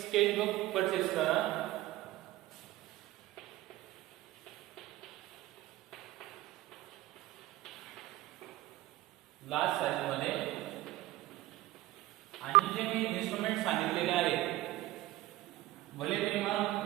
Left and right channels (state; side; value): quieter; left; 16.8 dB